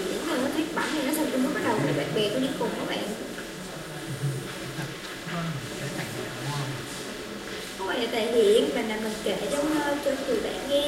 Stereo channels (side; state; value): both; identical; correlation 1.00